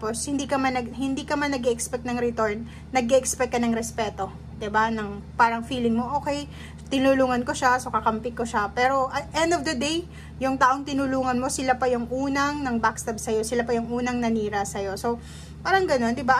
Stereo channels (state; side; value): identical; both; correlation 1.00